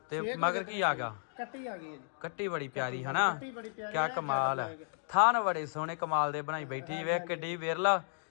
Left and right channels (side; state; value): right; silent; digital silence